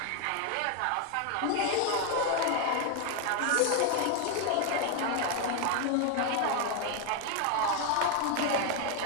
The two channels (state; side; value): different; both; correlation 0.01